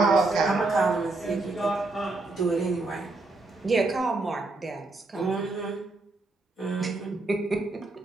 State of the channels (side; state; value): left; quieter; 3.2 dB